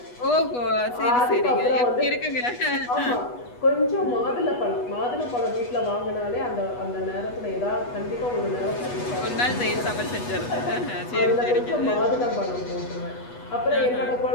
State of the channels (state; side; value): late; right; 8.2 ms